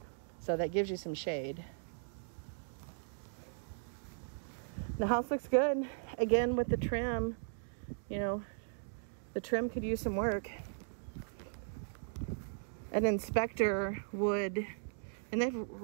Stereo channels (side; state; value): left; silent; digital silence